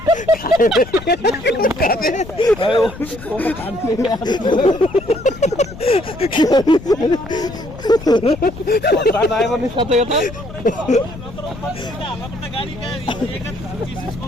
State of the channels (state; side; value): noise; left; rumble, 14 dB below the sound